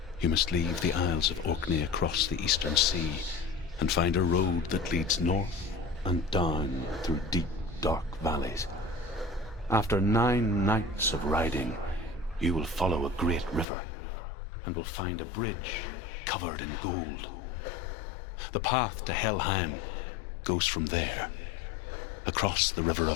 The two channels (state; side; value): drops out; right; at 13.7 s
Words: You must leave the Isles of Orkney across the eastern sea and find a road that leads north and down through deep, dark valleys. After 9 nights of riding, you will follow a great river and will find a bridge covered in gold. The path to Helheim goes from there, across the river